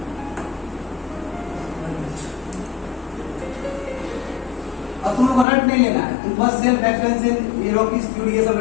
अब तुम लोग को रट नहीं लेना है, तुम बस self reference in Rockies theory ये सब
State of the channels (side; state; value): right; drops out; at 5.5 s